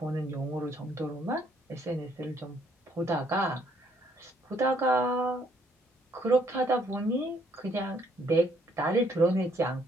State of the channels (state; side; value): normal; both; correlation 0.67